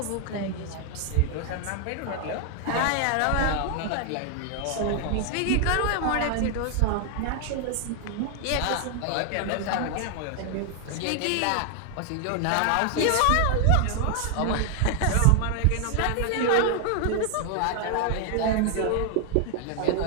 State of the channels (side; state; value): both; different; correlation 0.00